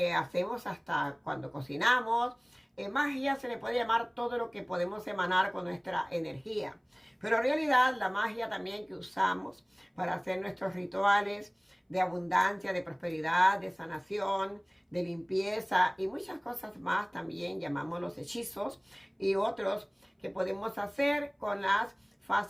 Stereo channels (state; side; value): identical; both; correlation 1.00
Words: hacemos hasta cuando cocinamos. Magia se le puede llamar todo lo que podemos emanar con nuestra energía. Pero en realidad la magia también que usamos para hacer nuestros rituales de abundancia, de prosperidad, de sanación, de limpieza y muchas cosas más también llamamos los hechizos y otros que podemos hacer con las